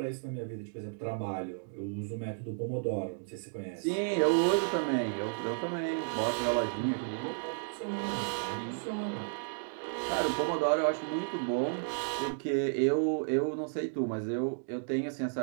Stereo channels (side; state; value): left; silent; digital silence